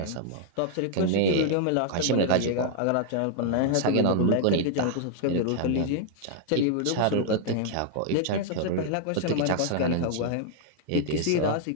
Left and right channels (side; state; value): both; different; correlation 0.00